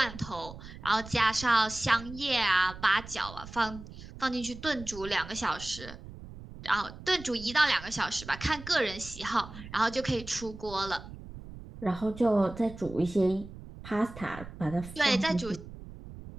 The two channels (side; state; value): right; noise; rumble, 14 dB below the sound